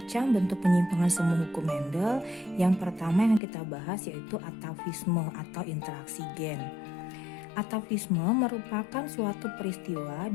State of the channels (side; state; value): right; drops out; at 3.4 s